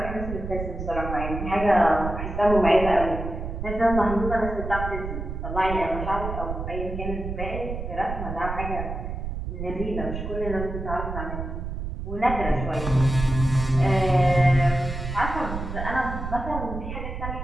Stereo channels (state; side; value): noise; right; rumble, 6 dB below the sound